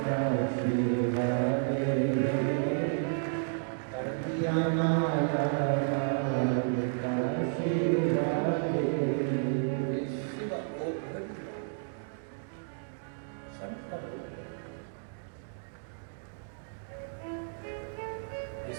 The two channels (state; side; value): silent; left; digital silence